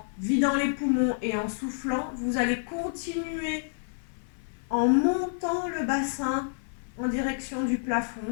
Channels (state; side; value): silent; right; 59 dB below the other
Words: vidant les poumons et en soufflant, vous allez continuer en montant le bassin en direction du